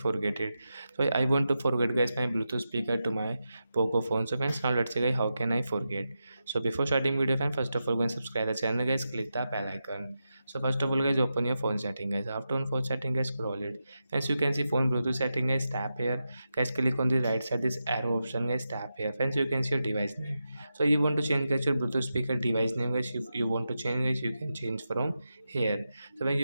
it? So I want to forget guys my Bluetooth speaker to my Poco phone. So friends, now let's see guys how can I forget. So before starting video friends, first of all go and subscribe the channel guys. Click the bell icon. So first of all guys, open your phone setting guys. After on phone setting guys, scroll it. As you can see phone Bluetooth setting guys, tap here guys, click on the right side this arrow option guys, tap here. Friends, you can see your device name. So you want to change guys your Bluetooth speaker device name guys. If you want to change guys, you can change from here. So when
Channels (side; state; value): both; inverted; correlation -0.89